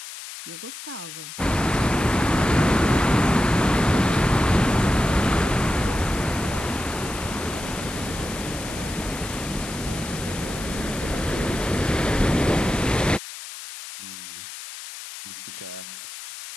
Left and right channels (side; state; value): left; noise; hiss, 11 dB below the sound